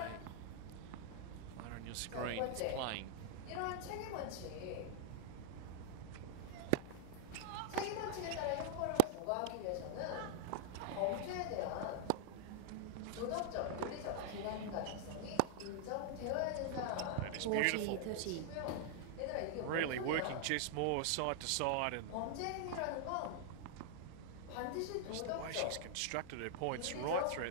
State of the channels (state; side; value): different; both; correlation 0.00